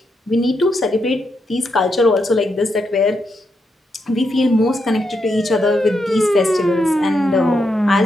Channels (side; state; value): both; normal; correlation 0.82